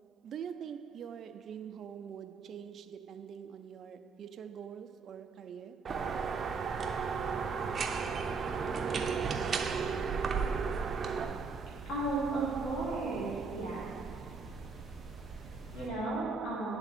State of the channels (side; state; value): left; quieter; 4.5 dB